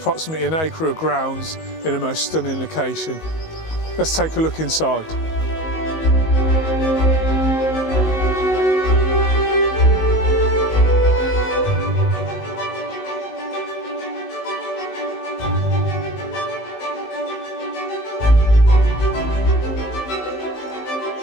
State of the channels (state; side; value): late; right; 19 ms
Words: an acre of grounds in a most stunning location. Let's take a look inside.